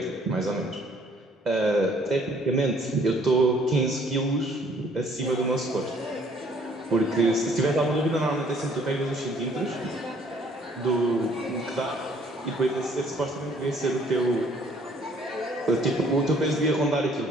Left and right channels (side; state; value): both; normal; correlation 0.61